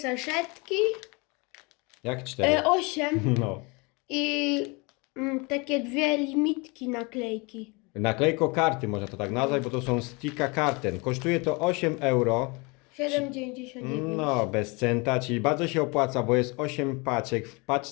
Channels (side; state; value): right; quieter; 28.4 dB